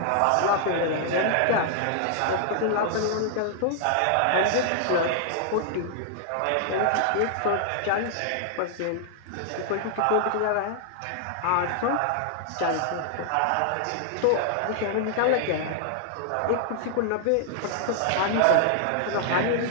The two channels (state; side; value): different; both; correlation -0.01